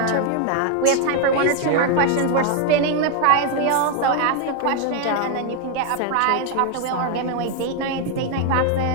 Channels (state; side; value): different; both; correlation 0.00